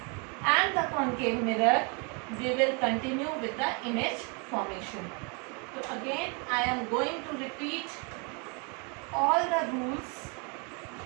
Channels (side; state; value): left; quieter; 33.9 dB